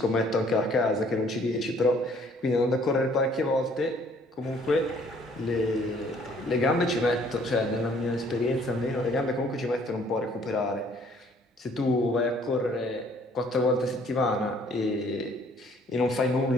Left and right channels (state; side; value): normal; both; correlation 0.60